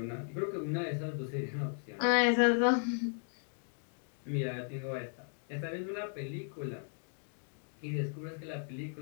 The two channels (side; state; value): right; silent; 54 dB below the other